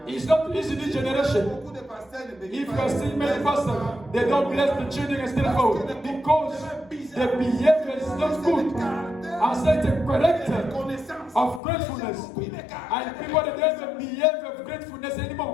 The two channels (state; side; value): drops out; right; at 11.6 s